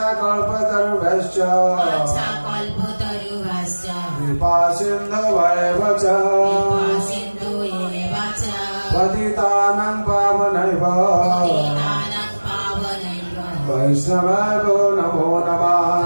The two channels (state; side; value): inverted; both; correlation -1.00